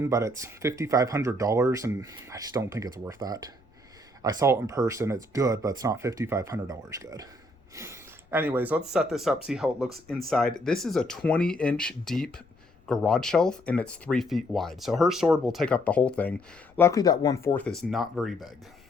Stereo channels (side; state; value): left; noise; rumble, 30 dB below the sound